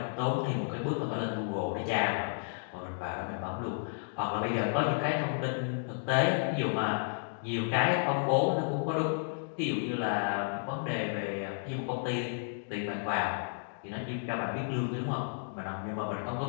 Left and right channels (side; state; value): right; silent; digital silence